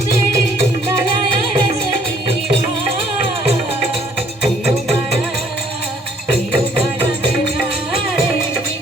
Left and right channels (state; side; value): normal; both; correlation 0.63